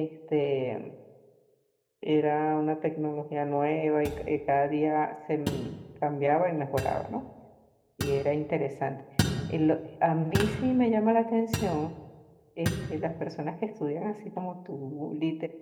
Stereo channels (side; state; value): both; identical; correlation 1.00